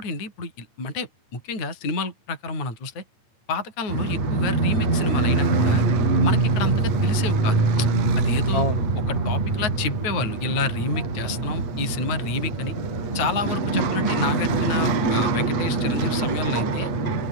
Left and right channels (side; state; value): right; late; 9.4 ms